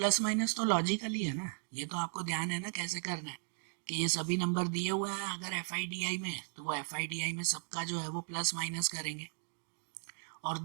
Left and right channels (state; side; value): silent; left; 54 dB below the other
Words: माइनस तो लॉजिकली है ना, ये तो आपको ध्यान है ना कैसे करना है, कि ये सभी नंबर दिए हुए हैं अगर एफ आई डी आई में, तो वो एफ आई डी आई में सबका जो है वो प्लस माइनस करेंगे। और